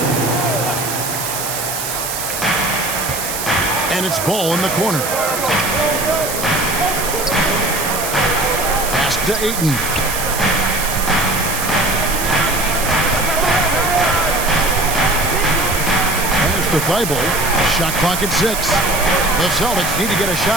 And it's Ball in the corner. Pass to Ayton. Pass to Thibault. Shot clock at 6. The Celtics need to get a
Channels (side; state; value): right; noise; hiss, 4 dB below the sound